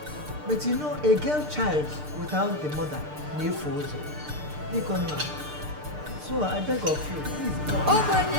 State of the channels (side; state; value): left; late; 6.7 ms